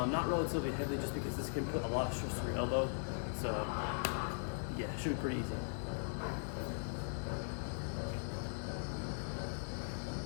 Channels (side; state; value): right; silent; digital silence